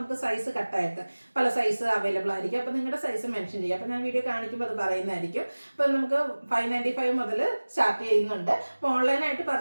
സൈസ് കട്ടായിട്ട് പല സൈസ് അവൈലബിൾ ആയിരിക്കും. അപ്പോൾ നിങ്ങളുടെ സൈസ് മെൻഷൻ ചെയ്യുക. അപ്പോൾ ഞാൻ വീഡിയോ കാണിക്കുമ്പോൾ അത് പറയുന്നതായിരിക്കും. അപ്പോൾ നമുക്ക് 595 മുതൽ സ്റ്റാർട്ട് ചെയ്യുന്നുണ്ട്. അപ്പോൾ ഓൺലൈനായിട്ട്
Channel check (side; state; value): both; inverted; correlation -1.00